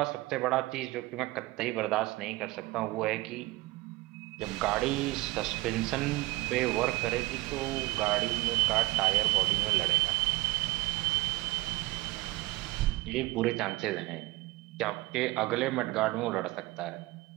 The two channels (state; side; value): quieter; left; 20.2 dB